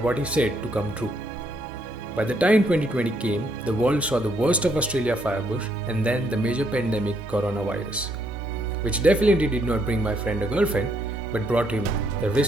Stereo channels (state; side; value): normal; both; correlation 0.72